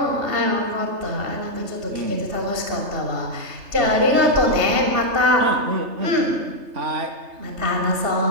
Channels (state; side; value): late; left; 3.3 ms